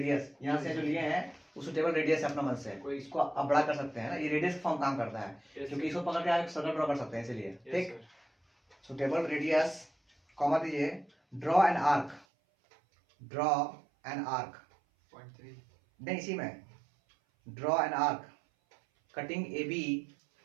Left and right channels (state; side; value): drops out; left; at 12.2 s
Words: यहाँ से जो लिए हैं वो सुटेबल रेडियस अपना मन से, कोई इसको आप बड़ा कर सकते हैं ना। ये रेडियस फॉर्म काम करता है, क्योंकि इसको पकड़ के आप सर्कल ड्रॉ कर सकते हैं, इसलिए, ठीक। सुटेबल रेडियस, कॉमा दीजिए, ड्रॉ एन आर्क, नहीं इसी में, draw an arc cutting A B